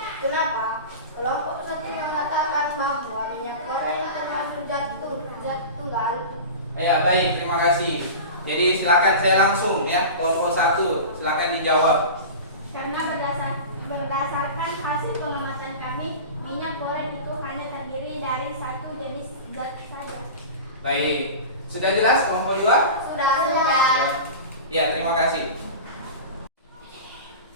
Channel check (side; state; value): both; inverted; correlation -0.31